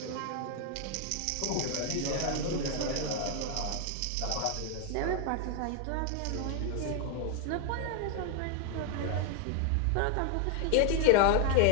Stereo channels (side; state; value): both; different; correlation 0.00